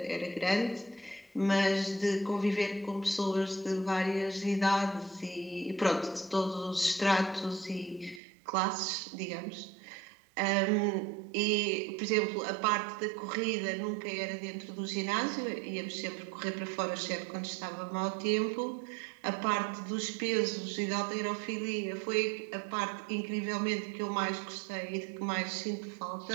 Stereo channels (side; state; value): left; drops out; at 8.2 s